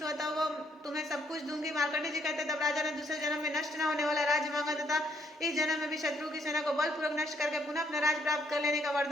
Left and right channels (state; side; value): normal; both; correlation 0.70